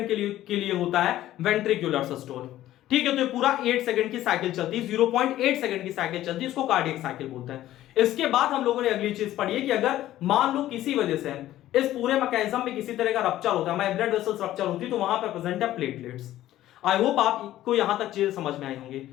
के लिए होता है वेंट्रिकुलर सिस्टोल। ठीक है, तो ये पूरा 8 सेकंड की साइकिल चलती है, 0.8 सेकंड की साइकिल चलती है, इसको कार्डियक साइकिल बोलते हैं। इसके बाद हम लोगों ने अगली चीज पढ़ी है कि अगर मान लो किसी वजह से इस पूरे मैकेनिज्म में किसी तरह का रप्चर होता है, ब्लड वेसल्स रप्चर होती है, तो वहां पर प्रेजेंट है प्लेटलेट्स। आई होप आपको यहां तक चीजें समझ में आई होंगी।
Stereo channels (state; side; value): quieter; right; 13.9 dB